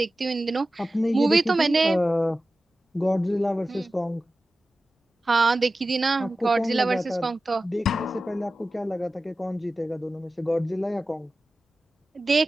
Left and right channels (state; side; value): normal; both; correlation 0.95